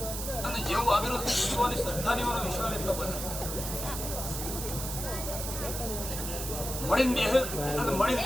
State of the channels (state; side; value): noise; right; hiss, 5 dB below the sound